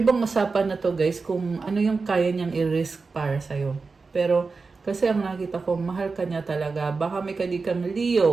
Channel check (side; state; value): left; quieter; 4.3 dB